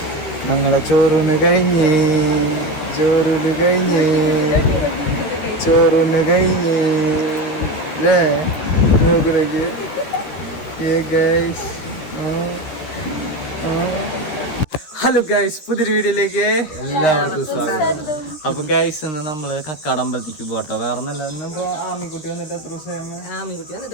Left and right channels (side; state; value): right; late; 13 ms